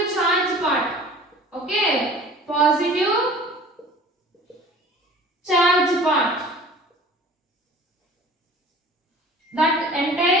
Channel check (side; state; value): both; normal; correlation 0.45